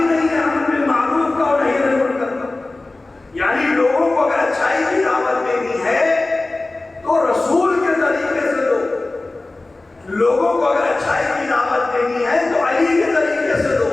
نہیں ہے امر بالمعروف کا اور نہی عن المنکر کا۔ یعنی لوگوں کو اگر اچھائی کی دعوت دینی ہے تو رسول کے طریقے سے دو، لوگوں کو اگر اچھائی کی دعوت دینی ہے تو علی کے طریقے سے دو۔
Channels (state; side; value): quieter; right; 3.1 dB